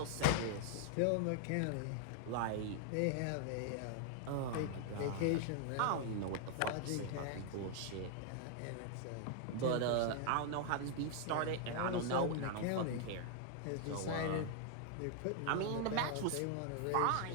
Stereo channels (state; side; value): different; both; correlation 0.00